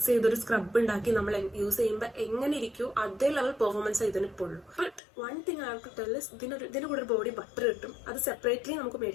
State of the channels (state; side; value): drops out; right; at 5.0 s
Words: ചെയ്തൊരു സ്ക്രബ് ഉണ്ടാക്കി നമ്മൾ യൂസ് ചെയ്യുമ്പോൾ എങ്ങനെ ഇരിക്കും അതേ ലെവൽ പെർഫോമൻസ് ഇതിന് ഇപ്പോൾ ഉള്ളൂ. But one thing I have to tell is ഇതിന്റെ കൂടെ ഒരു ബോഡി ബട്ടർ കിട്ടും. അത് സെപ്പറേറ്റ്ലി നമുക്ക്